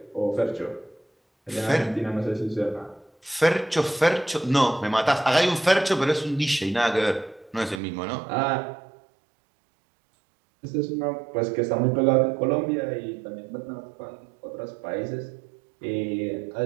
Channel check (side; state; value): left; drops out; at 7.8 s